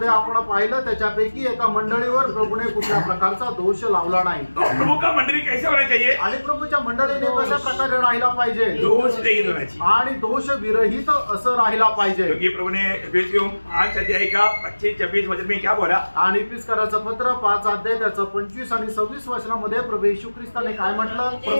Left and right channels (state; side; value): inverted; both; correlation -1.00